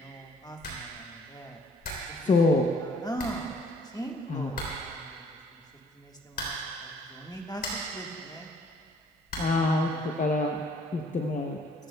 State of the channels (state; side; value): normal; both; correlation 0.59